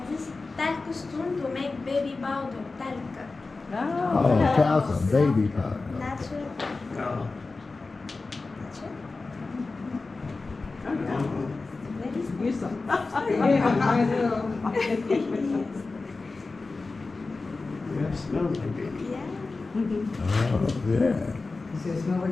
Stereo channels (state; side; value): quieter; right; 3.7 dB